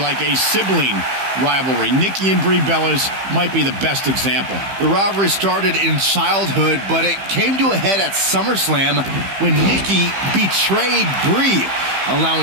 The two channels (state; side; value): late; left; 15 ms